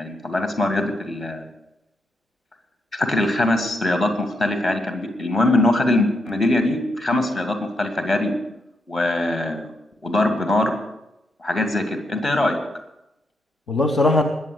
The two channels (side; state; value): both; normal; correlation 0.80